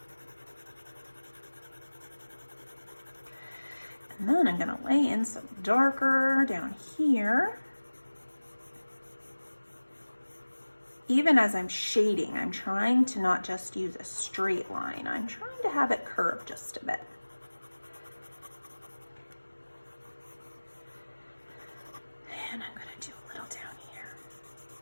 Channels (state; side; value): inverted; both; correlation -1.00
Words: And then I'm going to lay in some darker down here. Even as I'm shading, I'm trying to not just use a straight line. I'm trying to have it curve just a bit. And I'm going to do a little down here.